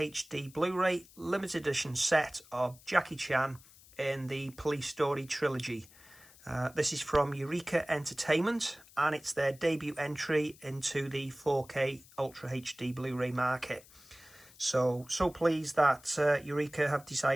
Blu-ray limited edition set of Jackie Chan in the Police Story Trilogy. This is from Eureka Entertainment and it's their debut entry into the 4K Ultra HD Blu-ray market. So pleased that Eureka have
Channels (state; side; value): noise; left; hiss, 24 dB below the sound